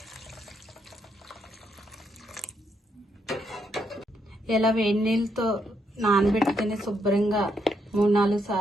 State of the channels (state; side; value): normal; both; correlation 0.77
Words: ఇలా వేడి నీళ్ళతో నానబెట్టుకుని శుభ్రంగా 3-4